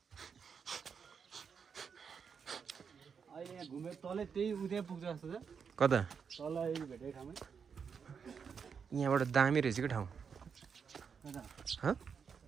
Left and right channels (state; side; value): quieter; left; 6.4 dB